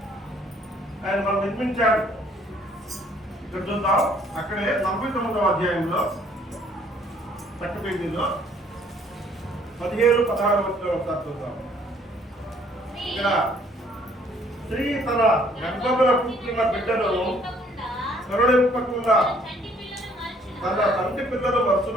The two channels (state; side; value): normal; both; correlation 0.61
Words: ఆయన మనం నిర్మించాడు. ఇక్కడ చూద్దాం, అక్కడే 49వ అధ్యాయంలో చక్క పేజీలో 17-16 ఒకసారి చూద్దాం. ఇక్కడ స్త్రీ తన గర్భమున పుట్టిన బిడ్డను కరుణింపకుండా తన తండ్రి పిల్లలు